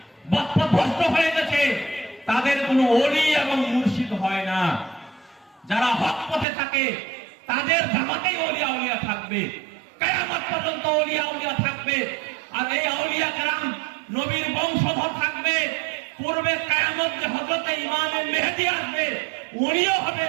পথভ্রষ্ট হয়ে গেছে, তাদের কোনো ওলি এবং মুর্শিদ হয় না। যারা হক পথে থাকে তাদের জামাতেই ওলিয়া উলিয়া থাকবে, কিয়ামত পর্যন্ত ওলিয়া উলিয়া থাকবে। আর এই আউলিয়া কেরাম নবীর বংশধর থাকবে। পূর্বে কিয়ামত যে হযরত ইমাম মেহেদী আসবে, উনিও হবে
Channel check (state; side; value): drops out; left; at 6.5 s